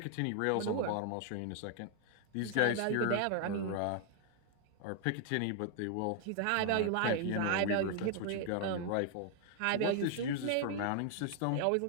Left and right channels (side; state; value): both; different; correlation 0.00